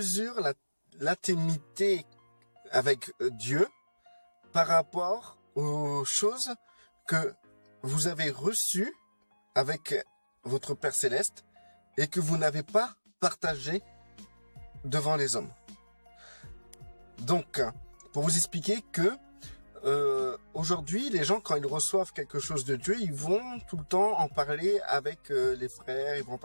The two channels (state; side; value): inverted; both; correlation -1.00